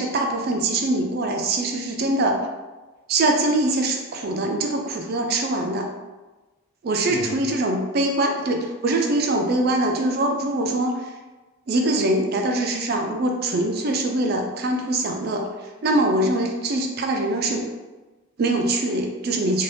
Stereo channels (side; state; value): both; normal; correlation 0.26